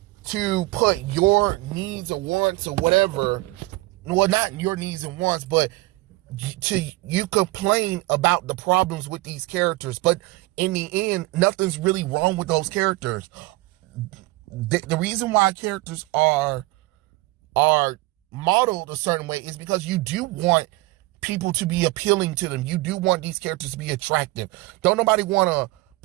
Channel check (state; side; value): quieter; left; 20.9 dB